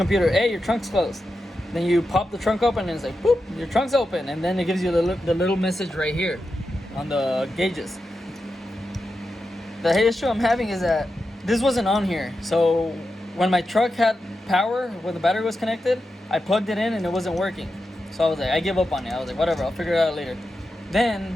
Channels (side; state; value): both; normal; correlation 0.89